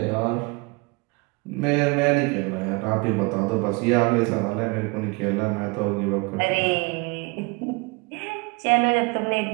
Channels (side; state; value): left; quieter; 27.5 dB